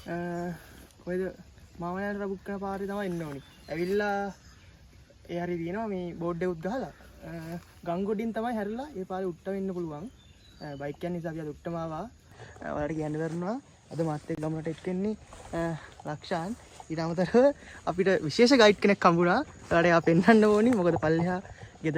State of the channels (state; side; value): identical; both; correlation 1.00